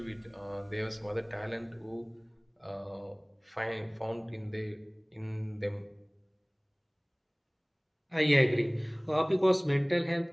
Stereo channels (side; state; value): both; identical; correlation 1.00